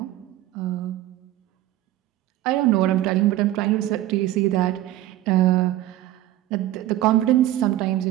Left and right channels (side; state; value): left; quieter; 14.5 dB